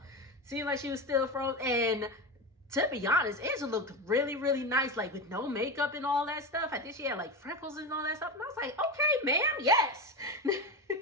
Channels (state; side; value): normal; both; correlation 0.20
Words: Seemed like she was still frozen. And to be honest, Angela looked really, really nice, like with no makeup and all that stuff. I think she had like freckles and all that stuff. And I was like, okay, ma'am, yes.